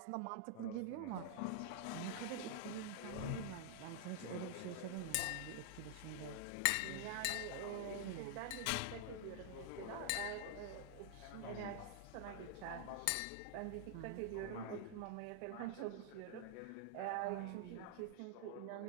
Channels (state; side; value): different; both; correlation 0.00